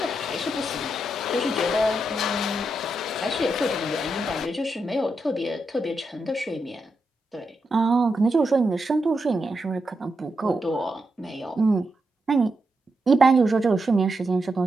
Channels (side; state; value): both; normal; correlation 0.85